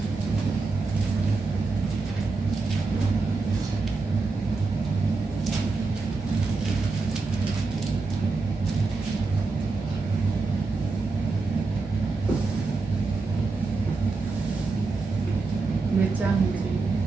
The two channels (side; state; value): left; quieter; 4.0 dB